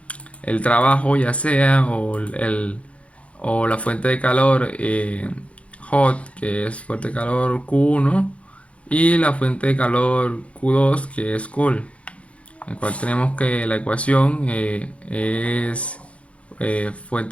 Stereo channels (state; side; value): late; right; 0.063 ms